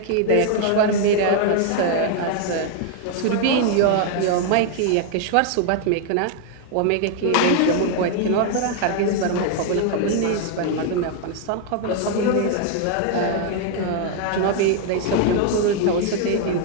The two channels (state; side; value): different; both; correlation 0.00